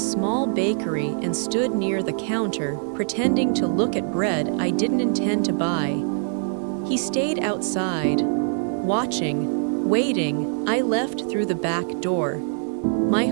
bakery and stood near the counter, pretending to look at bread I didn't intend to buy. He stayed outside, watching, waiting. I left through the back door. My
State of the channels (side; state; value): left; silent; digital silence